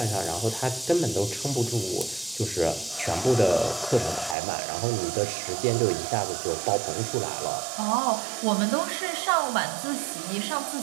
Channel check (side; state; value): left; drops out; at 4.4 s